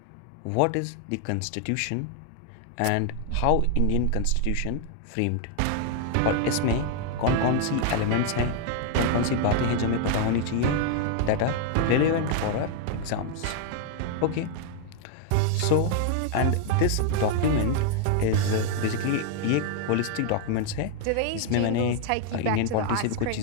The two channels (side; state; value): both; different; correlation 0.00